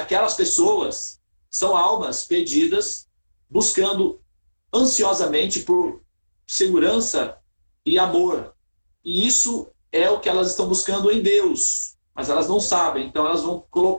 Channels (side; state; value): both; inverted; correlation -1.00